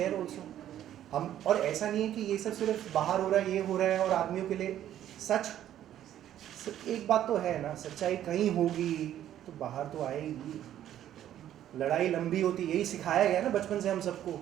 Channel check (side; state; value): left; quieter; 11.5 dB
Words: also. हम, और ऐसा नहीं है कि ये सब सिर्फ बाहर हो रहा है, ये हो रहा है और आदमियों के लिए। एक बात तो है ना, सच्चाई कहीं होगी तो बाहर तो आएगी। लड़ाई लंबी होती, यही सिखाया गया ना बचपन से हम सबको